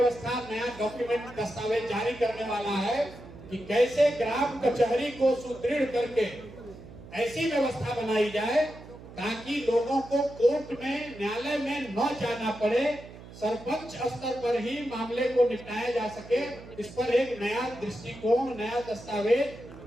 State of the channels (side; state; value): right; noise; hum, 17 dB below the sound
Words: नया डॉक्यूमेंट, दस्तावेज जारी करने वाला है कि कैसे ग्राम कचहरी को सुदृढ़ करके ऐसी व्यवस्था बनाई जाए ताकि लोगों को कोर्ट में, न्यायालय में न जाना पड़े, सरपंच स्तर पर ही मामले को निपटाया जा सके। इस पर एक नया दृष्टिकोण, नया